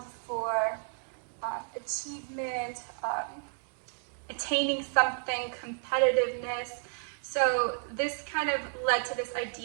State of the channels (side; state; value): left; silent; 56 dB below the other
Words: for achievement, attaining something, competitiveness. So this kind of led to this